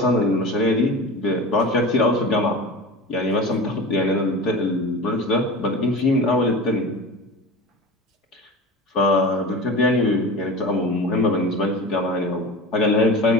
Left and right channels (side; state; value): both; normal; correlation 0.32